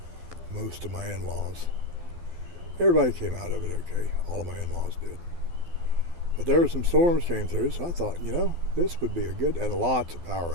most of my in-laws. Everybody came out of it okay. All of my in-laws did. But there were some storms came through, so I thought, this would be a good, and lots of power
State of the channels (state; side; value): late; left; 12 ms